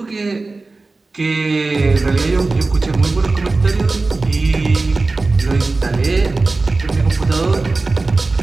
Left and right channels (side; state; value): left; quieter; 3.5 dB